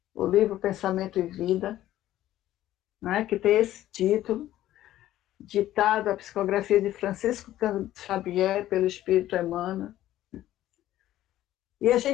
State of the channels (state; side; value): quieter; right; 13.7 dB